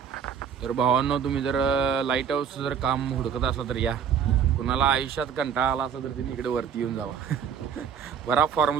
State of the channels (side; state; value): left; quieter; 7.7 dB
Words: तर भावांनो तुम्ही जर लाईट हाऊस जर काम हुडकत असला तर या कुणाला आयुष्यात कंटाळा आला असला तर तुम्ही इकडे वरती येऊन जावा बरा फॉर्म